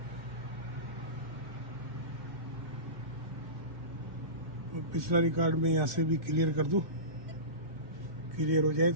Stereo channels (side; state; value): left; late; 2.4 ms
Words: पिछला रिकॉर्ड में यहाँ से भी क्लियर कर दूं, क्लियर हो जाए